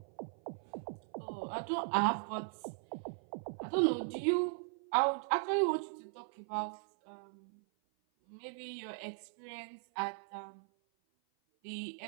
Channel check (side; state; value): left; silent; 52 dB below the other